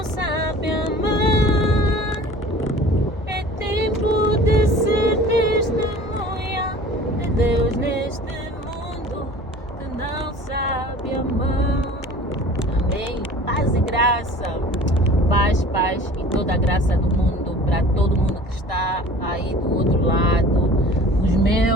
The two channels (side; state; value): both; normal; correlation 0.44